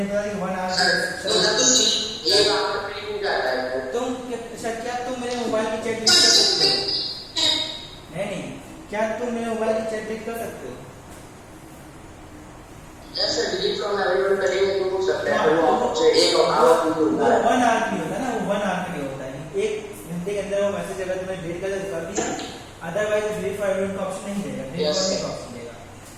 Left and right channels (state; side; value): identical; both; correlation 1.00